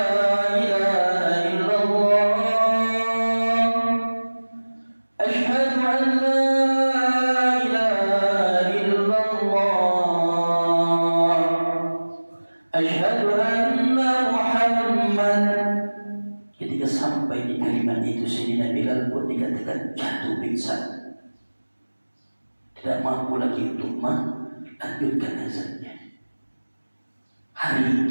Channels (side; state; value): both; inverted; correlation -1.00